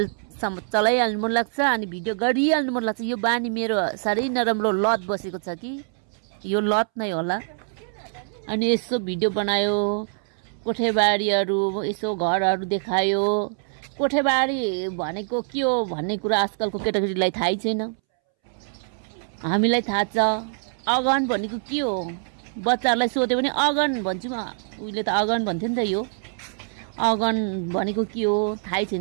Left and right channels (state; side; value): silent; left; 62 dB below the other